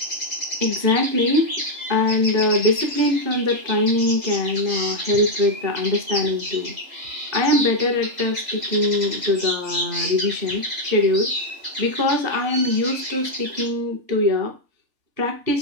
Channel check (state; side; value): late; left; 3.4 ms